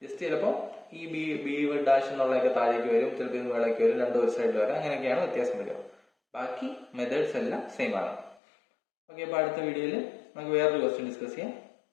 ജസ്റ്റ് ചിലപ്പോൾ ഈ ബി ഡാഷ് എന്നുള്ളതൊക്കെ താഴേക്ക് വരും, ചിലപ്പോൾ ഇത് വേളയ്ക്ക് വരും, രണ്ടും ഒരു സൈഡിൽ വരാം. അങ്ങനെയൊക്കെയാണ് വ്യത്യാസം വരിക. ബാക്കി മെത്തേഡ്സ് എല്ലാം സെയിം ആണ്. ഓക്കെ, അപ്പോൾ അടുത്ത വീഡിയോയിൽ നമുക്ക് വേറൊരു ക്വസ്റ്റ്യൻ ഡിസ്കസ് ചെയ്യാം.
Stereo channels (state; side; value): drops out; right; at 8.3 s